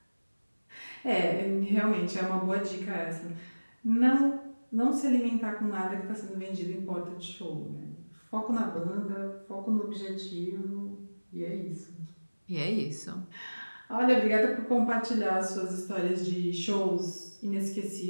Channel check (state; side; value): inverted; both; correlation -1.00